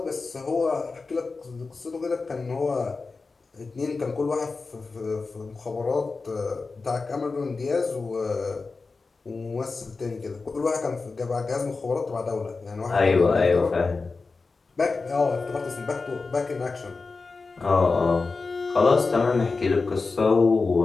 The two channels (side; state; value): right; quieter; 4.1 dB